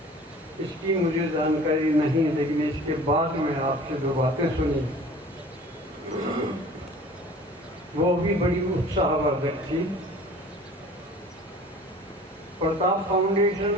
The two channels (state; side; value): normal; both; correlation 0.45